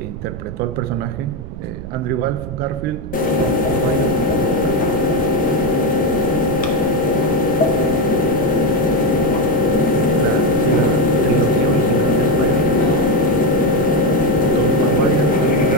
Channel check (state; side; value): noise; right; rumble, 10 dB below the sound